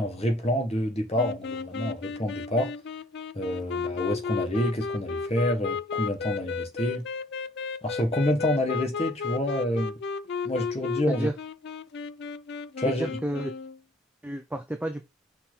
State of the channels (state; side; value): normal; both; correlation 0.58